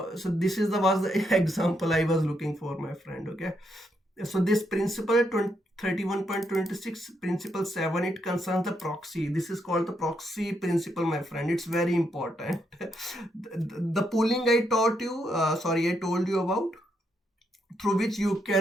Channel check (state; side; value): normal; both; correlation 0.78